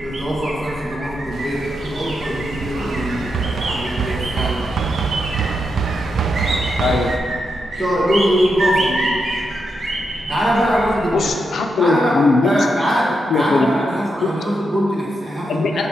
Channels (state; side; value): normal; both; correlation 0.84